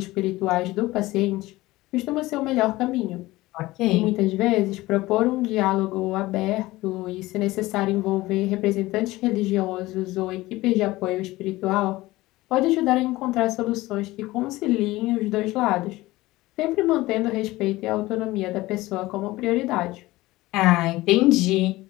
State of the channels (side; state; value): right; quieter; 18.7 dB